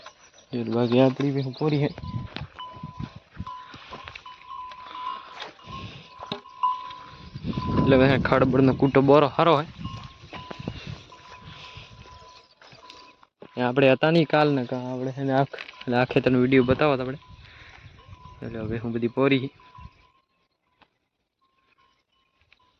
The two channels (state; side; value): identical; both; correlation 1.00